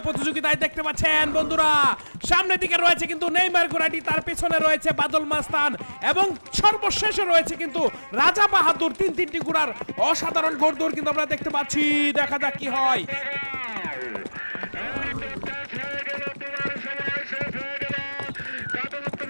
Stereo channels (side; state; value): both; inverted; correlation -1.00